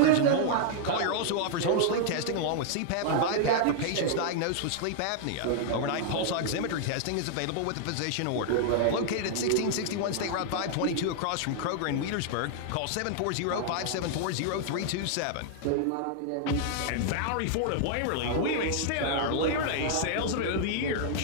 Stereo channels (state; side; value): different; both; correlation -0.01